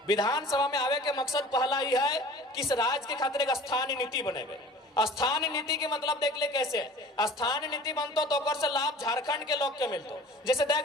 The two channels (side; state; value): both; normal; correlation 0.45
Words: विधानसभा में आवे के मकसद पहला ही है कि इस राज्य के खातिर एक स्थानीय नीति बनेबे। स्थानीय नीति के मतलब देख ले कैसे स्थानीय नीति बनतो तो ओकर से लाभ झारखंड के लोग के मिलतो। जैसे देख